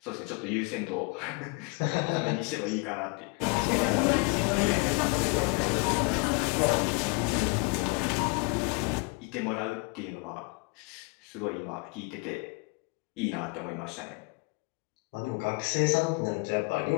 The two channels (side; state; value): right; quieter; 31.0 dB